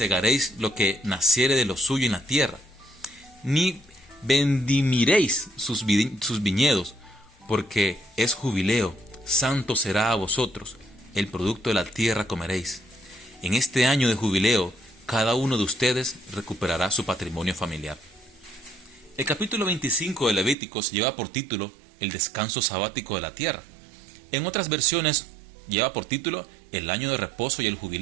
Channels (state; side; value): drops out; left; at 20.6 s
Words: lo que naciere de lo suyo en la tierra, ni vendimiréis sus viñedos, porque es jubileo. Santo será a vosotros. El producto de la tierra comeréis. En este año de jubileo, cada uno de ustedes recuperará su patrimonio familiar. El capítulo 25 de Levíticos lleva por título el descanso sabático de la tierra. En otras versiones lleva por título el año de reposo y el